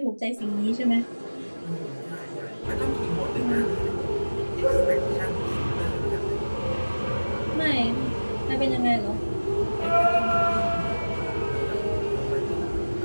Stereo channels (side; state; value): both; inverted; correlation -1.00